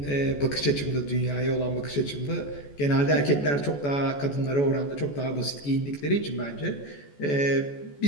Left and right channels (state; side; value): late; right; 14 ms